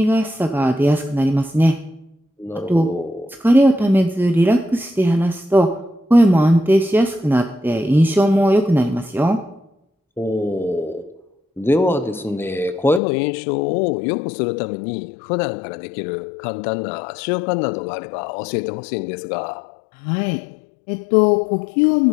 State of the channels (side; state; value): right; drops out; at 13.0 s